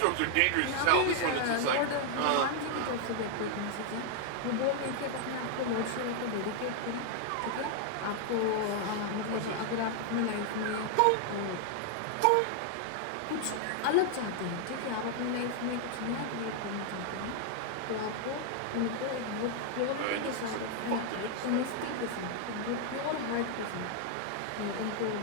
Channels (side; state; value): both; different; correlation 0.00